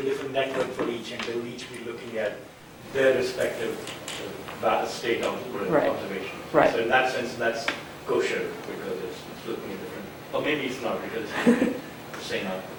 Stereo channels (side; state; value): both; identical; correlation 1.00